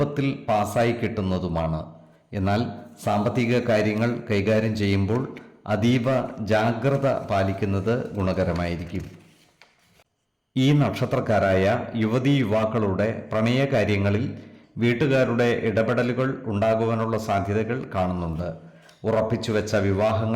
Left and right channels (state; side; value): identical; both; correlation 1.00